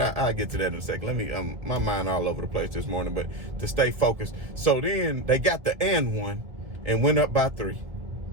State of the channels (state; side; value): late; left; 1.5 ms